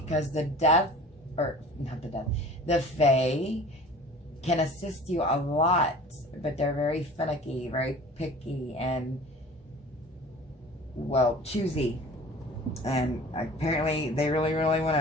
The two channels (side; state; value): both; normal; correlation 0.43